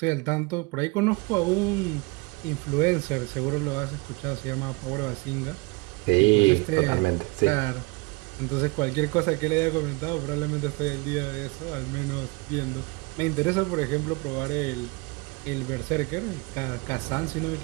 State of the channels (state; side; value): quieter; left; 26.5 dB